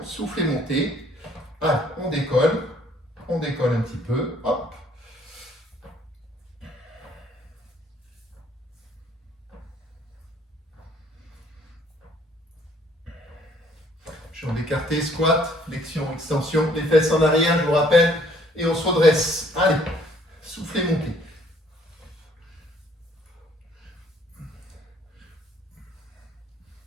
soufflez, montez. Ah, on décolle un petit peu, hop. Jambes écartées, squat, flexion, extension, les fesses en arrière, je vous rappelle, et on se redresse. Allez, soufflez, montez.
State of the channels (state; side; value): normal; both; correlation 0.62